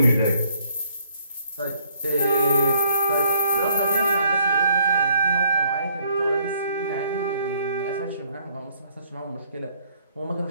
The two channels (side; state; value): both; inverted; correlation -0.66